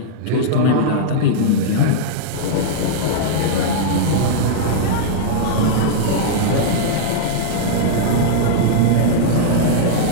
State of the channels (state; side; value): different; both; correlation -0.02